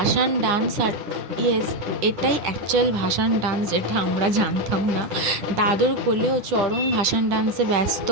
ডান্স, আর ইয়েস এটাই অ্যাকচুয়াল ভাসান ডান্স, যেটা আমরা জানতাম না। দাদুর কোলেও চরণ ভাসান ডান্সে ব্যস্ত,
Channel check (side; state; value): left; late; 9.9 ms